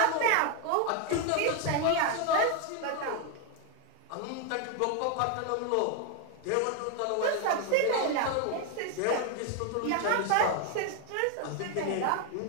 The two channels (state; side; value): different; both; correlation 0.01